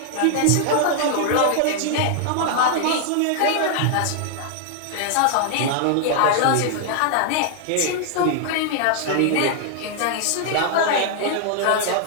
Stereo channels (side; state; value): both; different; correlation 0.00